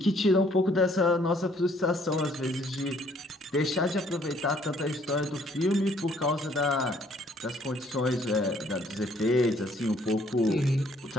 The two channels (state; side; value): normal; both; correlation 0.63